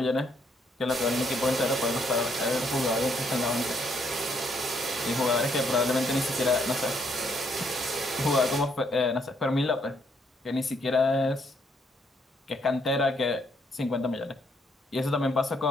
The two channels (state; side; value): normal; both; correlation 0.71